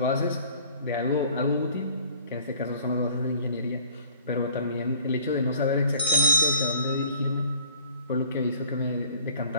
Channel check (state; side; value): inverted; both; correlation -0.52